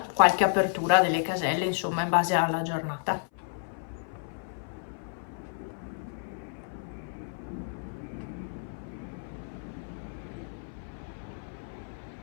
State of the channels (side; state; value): right; silent; 56 dB below the other